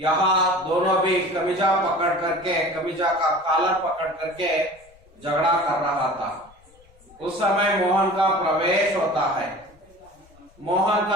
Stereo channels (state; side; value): noise; left; rumble, 28 dB below the sound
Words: दोनों भी कमीजा पकड़ करके, कमीजा का कॉलर पकड़ करके झगड़ा कर रहा था। उस समय मोहन का प्रवेश होता है। मोहन